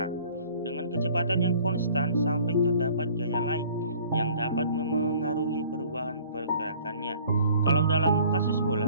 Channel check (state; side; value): inverted; both; correlation -0.53